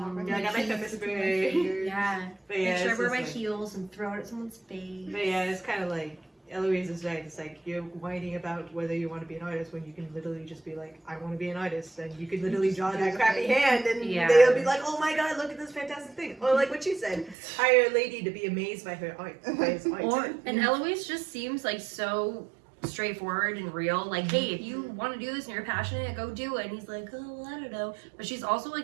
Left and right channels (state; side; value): drops out; left; at 17.4 s